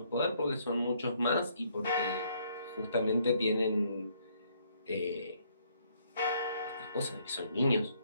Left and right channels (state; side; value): inverted; both; correlation -0.68